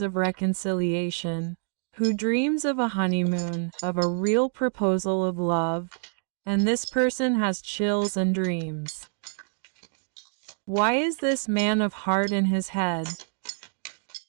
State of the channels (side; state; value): left; silent; 60 dB below the other